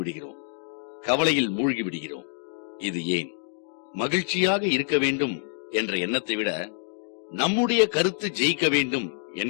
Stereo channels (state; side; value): silent; right; digital silence